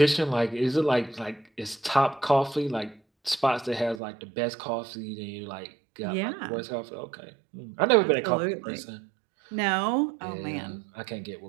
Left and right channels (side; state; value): left; drops out; at 4.0 s